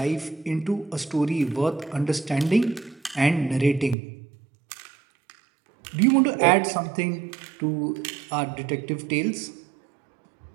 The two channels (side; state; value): left; drops out; at 4.0 s